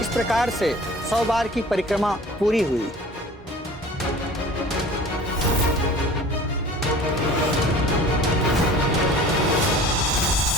इस प्रकार से 100 बार की परिक्रमा पूरी हुई।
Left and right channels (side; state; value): both; normal; correlation 0.44